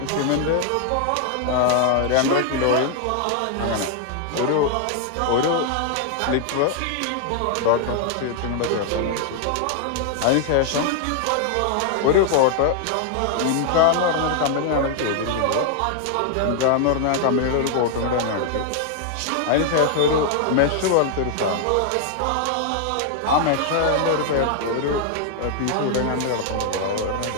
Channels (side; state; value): both; different; correlation 0.00